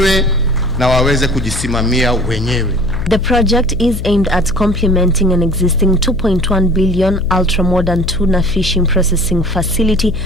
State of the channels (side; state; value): left; noise; hum, 7 dB below the sound